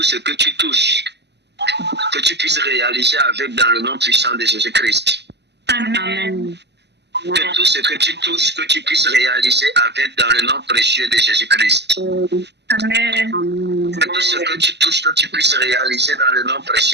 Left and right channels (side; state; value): left; late; 0.50 ms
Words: tu touches, que tu puisses réaliser avec dans le nom puissant de Jésus-Christ. Amen. Que tout ce que tu touches, que tu puisses réaliser avec dans le nom précieux de Jésus-Christ. Amen. Que tout ce que tu touches, que tu puisses réaliser dans le nom